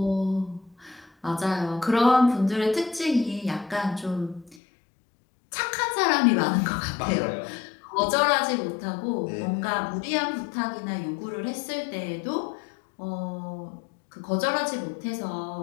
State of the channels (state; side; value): drops out; right; at 4.6 s